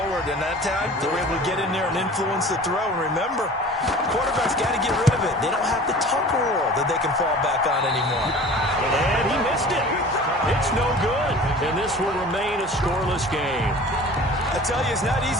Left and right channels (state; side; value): normal; both; correlation 0.42